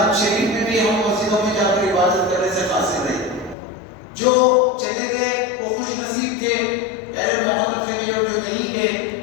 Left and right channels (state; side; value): drops out; right; at 3.6 s